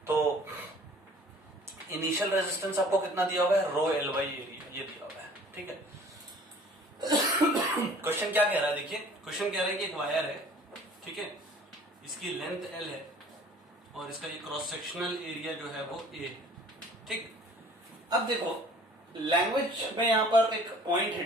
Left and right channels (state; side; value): normal; both; correlation 0.51